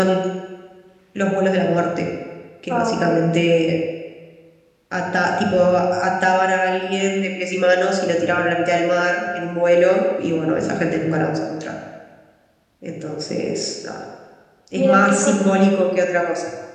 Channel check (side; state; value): both; identical; correlation 1.00